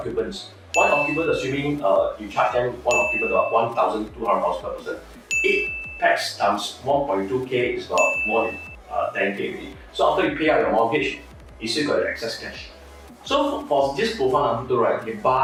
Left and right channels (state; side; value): identical; both; correlation 1.00